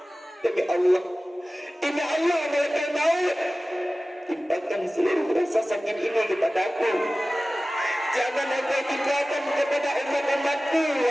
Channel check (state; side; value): normal; both; correlation 0.97